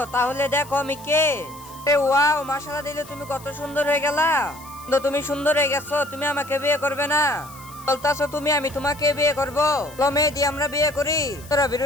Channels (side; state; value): left; noise; hiss, 20 dB below the sound